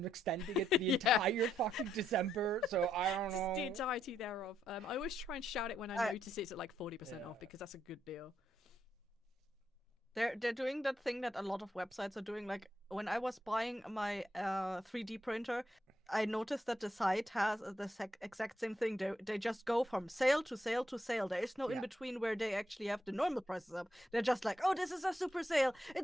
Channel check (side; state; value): both; normal; correlation 0.78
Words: extending it the entire fucking December. So I don't know. The entirety thereof. I always try and shout it when I notice it's at like 40% off because that's a good deal. They're doing that thing that a lot of websites are doing. Like when I was buying my 3D printer, I noticed that the site has the exact same thing. They just go from sale to sale to sale. There is no in between where they actually have the normal prices up. They're just like, oh, this is a super sale.